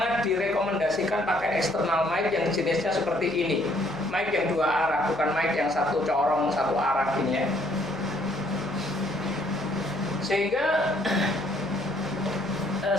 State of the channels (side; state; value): left; noise; hum, 24 dB below the sound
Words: direkomendasikan pakai external mic yang jenisnya seperti ini, mic yang dua arah, bukan mic yang satu corong satu arah ini ya. Sehingga